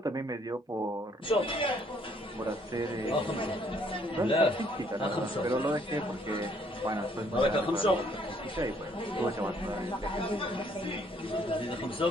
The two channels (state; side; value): normal; both; correlation 0.65